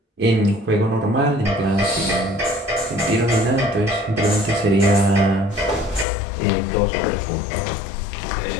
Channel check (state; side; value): drops out; right; at 6.1 s